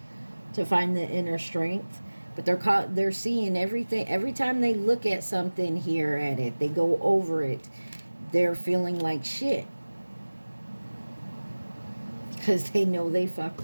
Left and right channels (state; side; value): inverted; both; correlation -1.00